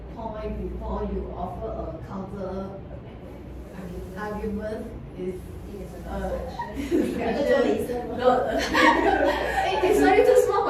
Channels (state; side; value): identical; both; correlation 1.00